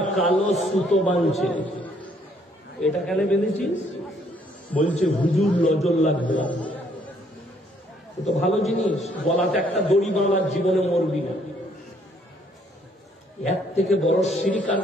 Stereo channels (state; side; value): normal; both; correlation 0.66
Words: কালো সুতো বাঁধছে। এটা কেন বেঁধেছিস? বলছে হুজুর নজর লাগবে। তো ভালো জিনিস, গলাতে একটা দড়ি বাঁধার, জীবনে মরবি না। এর থেকে বড় শিরক আর